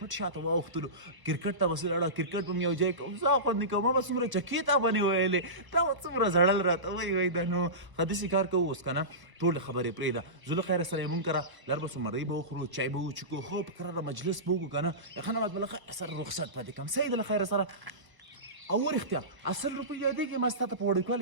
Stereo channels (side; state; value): left; late; 1.2 ms